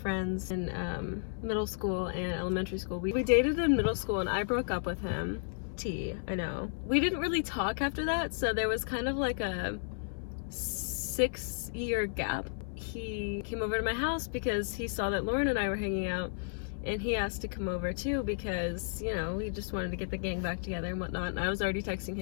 in middle school and elementary school. We dated in middle school and I broke up with him. I know. We didn't really talk after that, so there was kind of like a 6-year gap. He came over to my house because he saw that Lauren and I were hanging out, and he asked to come over too because, you know, he just wanted to get the gang back together and whatnot. And I was already texting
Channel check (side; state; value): right; silent; 56 dB below the other